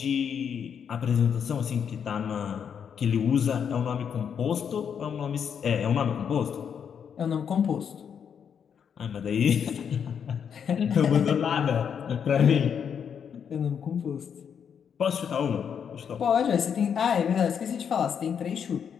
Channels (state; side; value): quieter; right; 7.6 dB